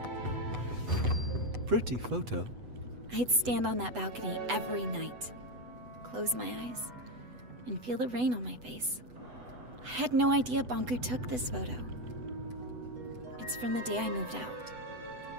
Pretty photo. I'd stand on that balcony every night, close my eyes, and feel the rain on my face. I had no idea Bonku took this photo. It's from the day I moved out.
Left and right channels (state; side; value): late; left; 8.0 ms